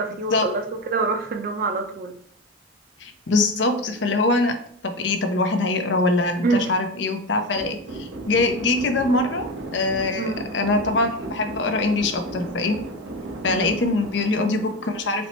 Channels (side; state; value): both; normal; correlation 0.20